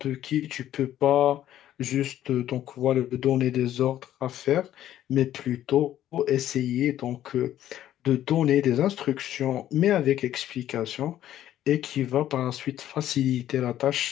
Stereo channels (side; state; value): right; quieter; 12.2 dB